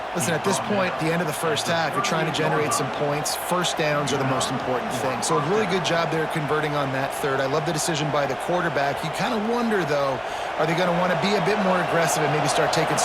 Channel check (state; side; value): identical; both; correlation 1.00